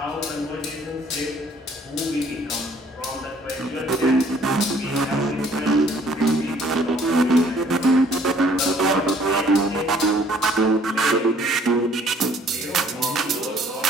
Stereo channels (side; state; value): both; normal; correlation 0.59